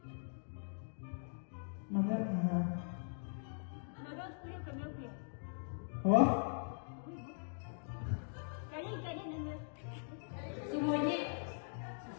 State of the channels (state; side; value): silent; right; digital silence